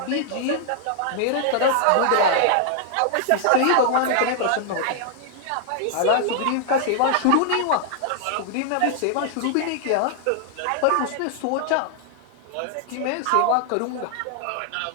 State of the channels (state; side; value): different; both; correlation 0.00